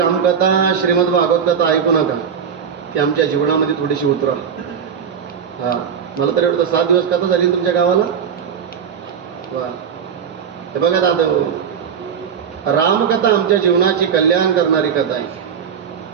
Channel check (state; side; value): quieter; left; 7.4 dB